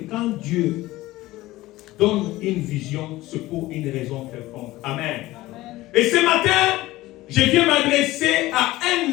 Dieu donne une vision, c'est pour une raison quelconque. Amen. Et ce matin, je viens m'adresser à un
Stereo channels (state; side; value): quieter; right; 17.8 dB